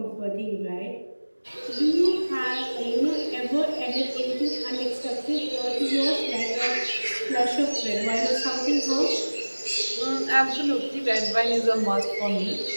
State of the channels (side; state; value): both; inverted; correlation -1.00